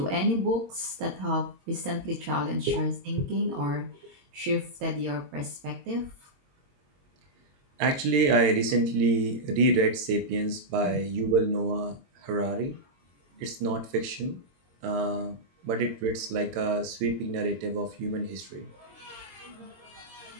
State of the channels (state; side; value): late; left; 22 ms